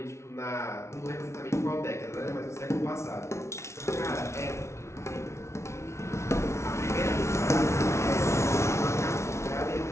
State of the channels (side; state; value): right; late; 0.13 ms